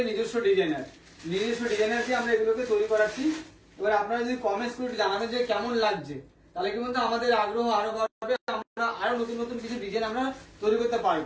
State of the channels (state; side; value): identical; both; correlation 1.00